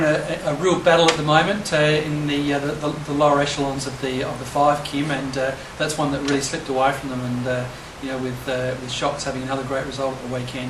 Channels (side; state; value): both; identical; correlation 1.00